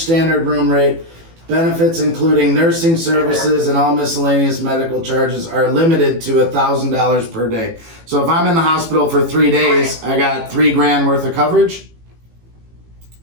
room rate, benefits including nursing services and all miscellaneous medical charges are limited to $1,000 per day. So if I'm in the hospital for 3 days, I got $3,000 worth of coverage.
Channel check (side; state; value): left; late; 18 ms